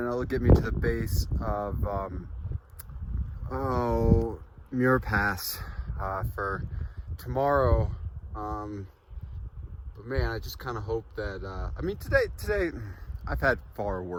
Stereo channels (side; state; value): both; identical; correlation 1.00